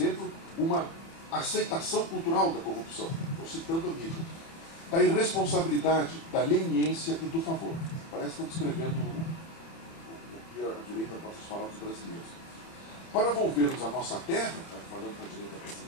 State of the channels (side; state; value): right; late; 30 ms